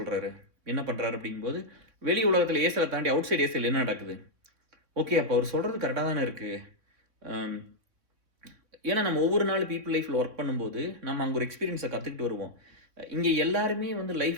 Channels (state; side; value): late; left; 3.5 ms